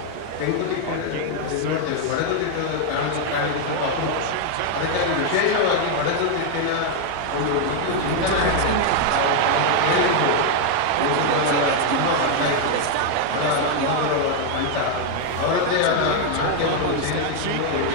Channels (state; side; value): different; both; correlation 0.00